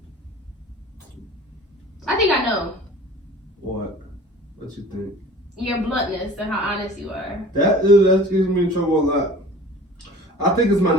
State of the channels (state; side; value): normal; both; correlation 0.43